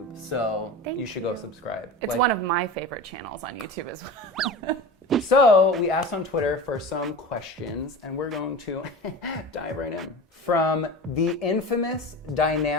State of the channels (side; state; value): both; normal; correlation 0.31